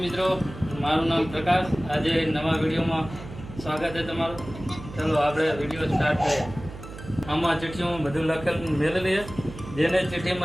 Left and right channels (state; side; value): noise; right; hum, 13 dB below the sound